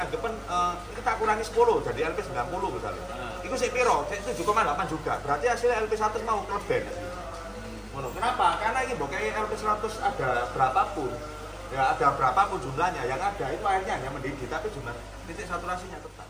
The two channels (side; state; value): both; identical; correlation 1.00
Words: anggapan, ini tak kurangi 10, jadi LP90 misalnya. Itu saya piro, saya 7,8 juga. Berarti hasilnya LP100 mau kleben. Kenapa? Karena ini kayak LP100 ada berapapun, ya ada berapapun jumlahnya, yang ada itu airnya hanya mendidih, tapi jumlah titik saturasinya tetap.